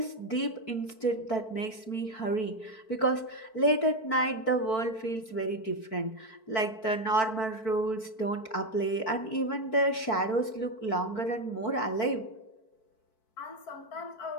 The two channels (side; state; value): right; late; 4.5 ms